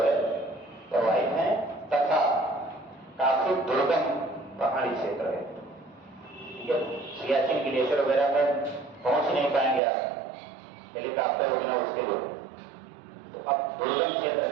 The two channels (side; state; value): left; drops out; at 9.8 s